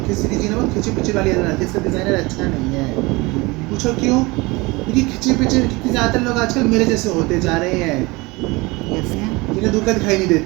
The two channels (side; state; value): left; quieter; 23.9 dB